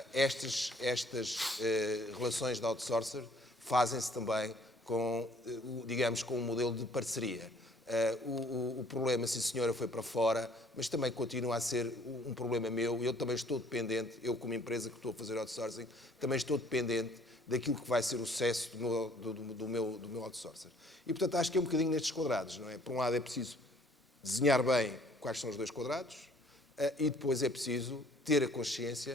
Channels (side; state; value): both; normal; correlation 0.59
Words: Estas relações de outsourcer fazem-se também com, digamos, com um modelo de parceria. O problema, sim senhora, foi para fora, mas também continua a ser um problema meu. Eu também estou dependente, eu como empresa que estou a fazer outsourcing, também estou dependente daquilo que vai ser o sucesso do meu outsourcer. E, portanto, acho que é um bocadinho nestes quadrados, não é? Por um lado é preciso desenhar bem quais são os 2 quadrados e depois é preciso ter a